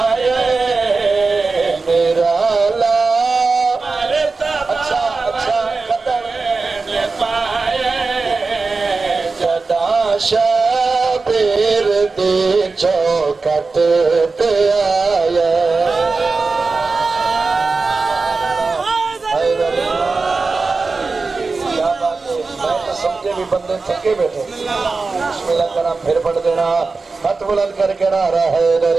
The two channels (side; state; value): left; quieter; 4.1 dB